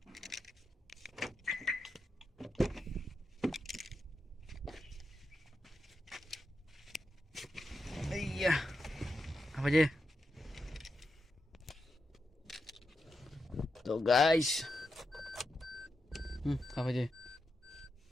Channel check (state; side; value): normal; both; correlation 0.87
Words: iya apa aja tuh guys apa aja